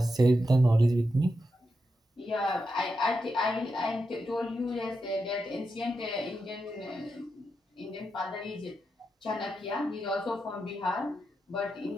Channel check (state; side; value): normal; both; correlation 0.86